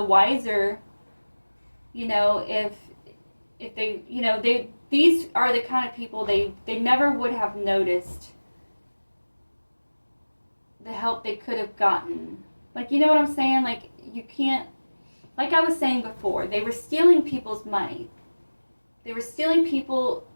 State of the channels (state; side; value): inverted; both; correlation -1.00